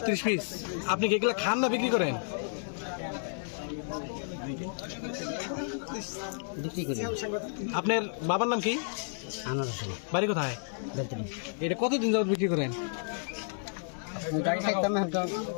পিস। আপনি কি এগুলো খান না বিক্রি করেন? আপনার বাবার নাম কি? বাড়ি কোথায়? এটা কতদিন যাবত বিক্রি করেন?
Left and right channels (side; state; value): right; silent; digital silence